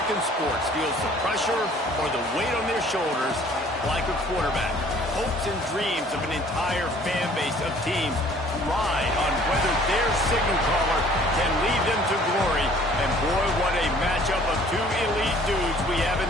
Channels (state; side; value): normal; both; correlation 0.55